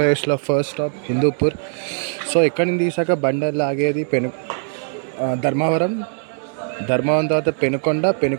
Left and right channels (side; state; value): left; silent; digital silence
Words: ఫస్ట్ స్టాప్ హిందూపూర్. సో ఇక్కడ నుంచి తీసాక బండి లాగేది ధర్మవరం తర్వాత